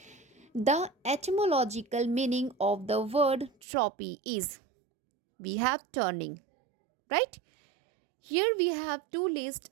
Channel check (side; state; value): left; drops out; at 3.5 s